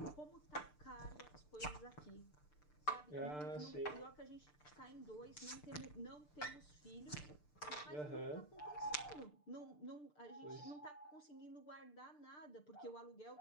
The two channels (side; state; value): right; late; 6.7 ms